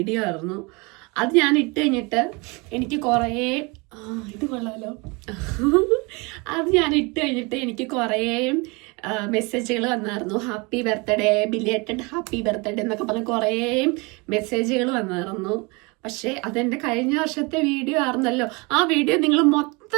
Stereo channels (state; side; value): quieter; left; 27.8 dB